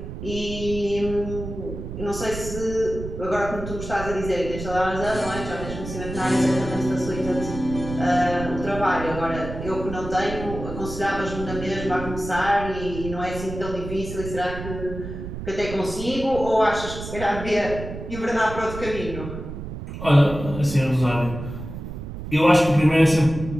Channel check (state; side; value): noise; right; rumble, 9 dB below the sound